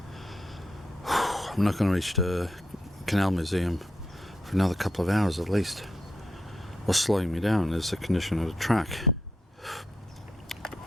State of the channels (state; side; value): normal; both; correlation 0.83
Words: Canal Museum for another couple of hours at least. What's slowing me down is the condition of the track.